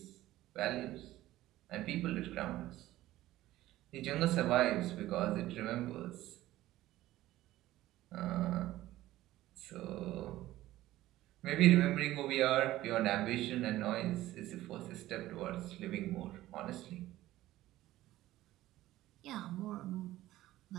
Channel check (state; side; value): quieter; left; 15.6 dB